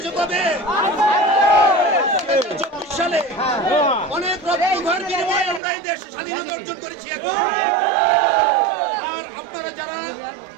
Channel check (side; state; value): left; drops out; at 5.6 s